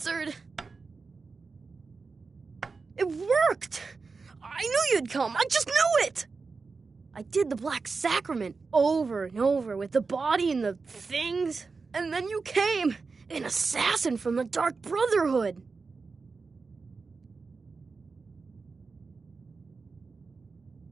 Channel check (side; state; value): left; quieter; 4.4 dB